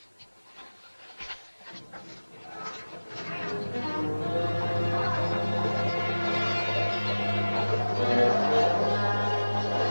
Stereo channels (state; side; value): inverted; both; correlation -1.00